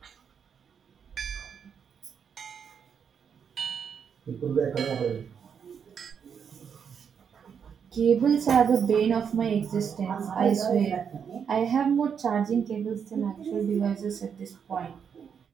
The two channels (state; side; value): quieter; left; 7.2 dB